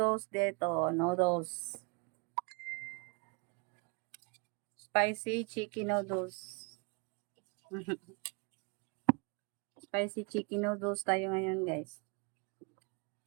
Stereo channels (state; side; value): quieter; left; 32.3 dB